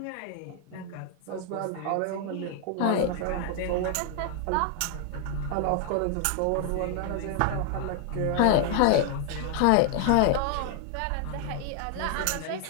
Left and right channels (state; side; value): different; both; correlation 0.00